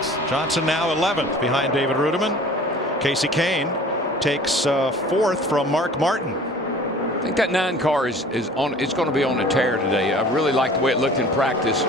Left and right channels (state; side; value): normal; both; correlation 0.46